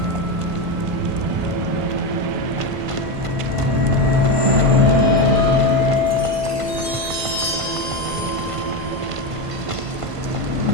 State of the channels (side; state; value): left; late; 1.5 ms